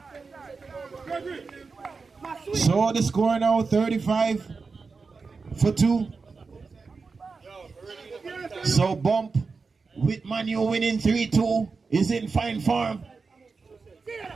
So the score now 35 for 2. So Bump with Manu winning 3-2 is in fine form.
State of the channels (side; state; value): left; quieter; 4.6 dB